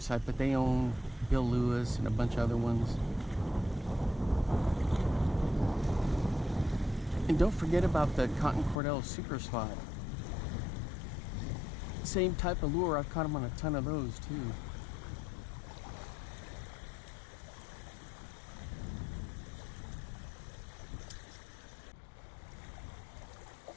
but they own Bill Lewis and a bunch of other ones. And don't forget about the Cotton Cordell Super Slot. Same type of lure, I've caught them on a ton of those too.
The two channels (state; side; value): drops out; right; at 8.8 s